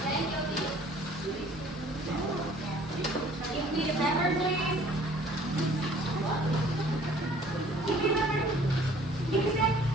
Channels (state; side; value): normal; both; correlation 0.54